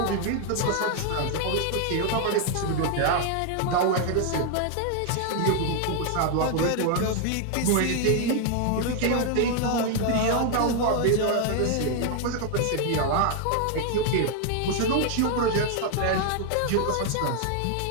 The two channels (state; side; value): different; both; correlation 0.00